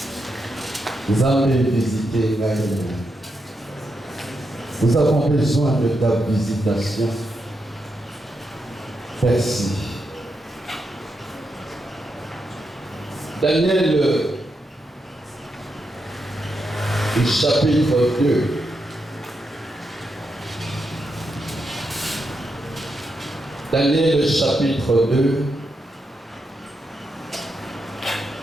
Vous avez visité Gaïa. Nous avons besoin de ta visitation. Merci. Daniel, chapitre 2. Daniel, chapitre 2,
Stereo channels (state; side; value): normal; both; correlation 0.84